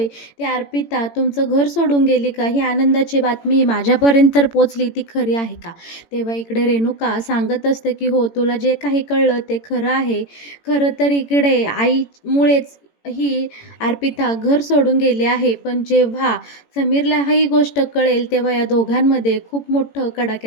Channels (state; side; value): late; right; 18 ms